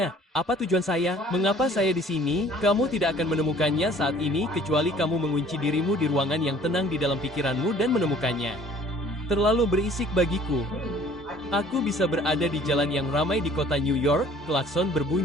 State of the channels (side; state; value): both; normal; correlation 0.53